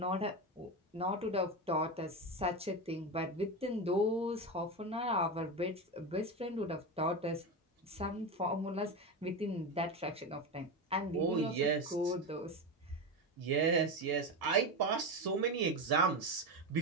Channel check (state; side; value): normal; both; correlation 0.17